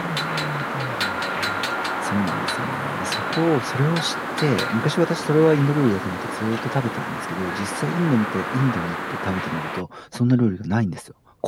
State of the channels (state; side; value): identical; both; correlation 1.00